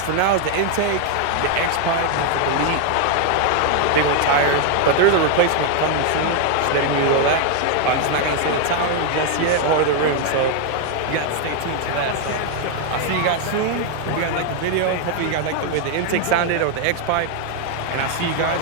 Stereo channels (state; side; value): different; both; correlation 0.00